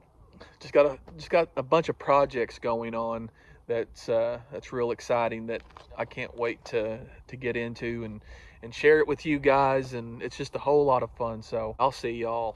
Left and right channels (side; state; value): both; identical; correlation 1.00